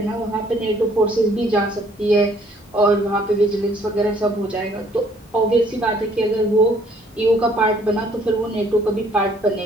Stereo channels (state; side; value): normal; both; correlation 0.62